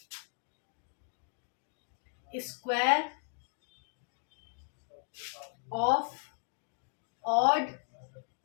square of odd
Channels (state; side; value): silent; right; 54 dB below the other